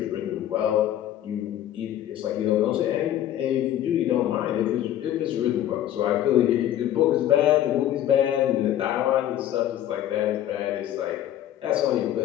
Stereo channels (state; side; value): quieter; right; 12.0 dB